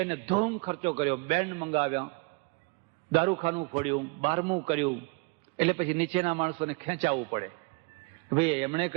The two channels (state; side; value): quieter; left; 29.0 dB